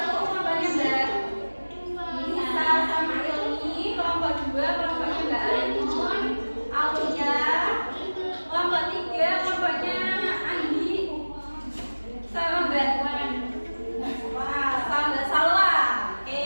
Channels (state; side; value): inverted; both; correlation -1.00